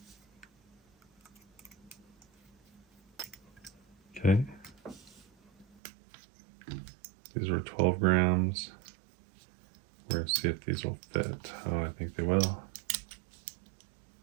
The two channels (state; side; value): drops out; left; at 5.8 s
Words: Okay, these were 12 grams. We're going to see if these will fit. Oh, I think they will.